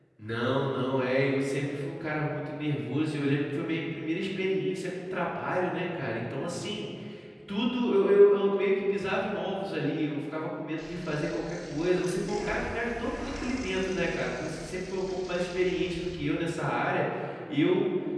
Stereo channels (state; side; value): identical; both; correlation 1.00